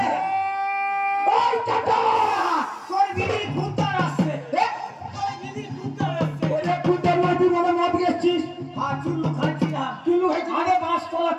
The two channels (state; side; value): identical; both; correlation 1.00